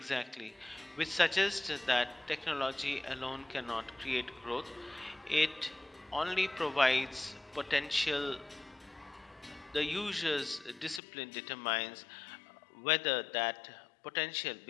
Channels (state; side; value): drops out; right; at 11.0 s